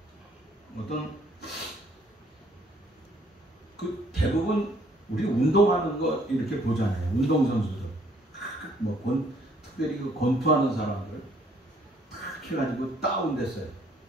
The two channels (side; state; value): both; normal; correlation 0.64